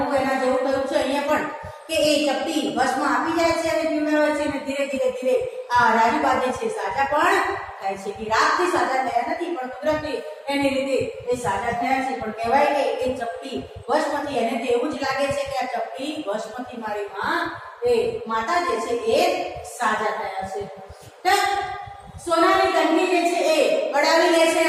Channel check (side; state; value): both; identical; correlation 1.00